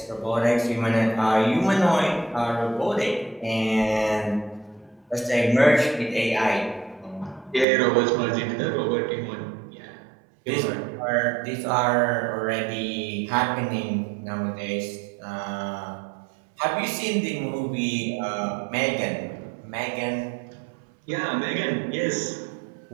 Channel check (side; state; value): left; drops out; at 7.7 s